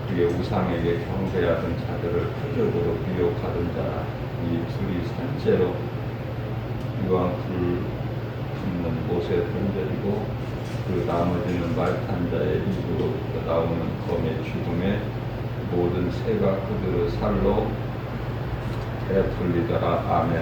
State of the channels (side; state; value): both; identical; correlation 1.00